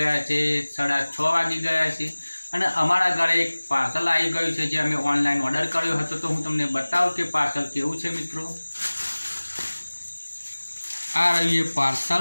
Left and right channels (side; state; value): both; inverted; correlation -1.00